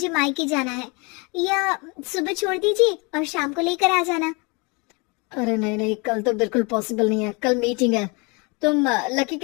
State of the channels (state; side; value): quieter; right; 29.9 dB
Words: मायके जाना है, या सुबह छोड़ दीजिए और शाम को लेकर आ जाना। अरे नहीं नहीं, कल तो बिल्कुल पॉसिबल नहीं है, कल मीटिंग है। तुम लकी